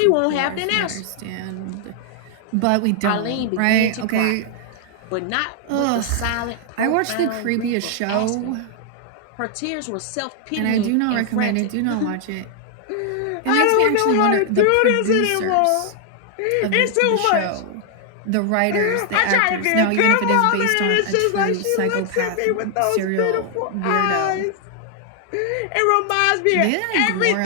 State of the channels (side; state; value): both; different; correlation 0.00